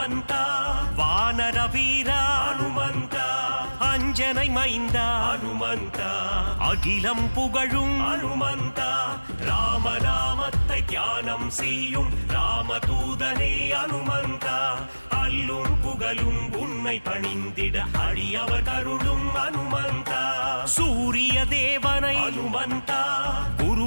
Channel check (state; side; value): inverted; both; correlation -1.00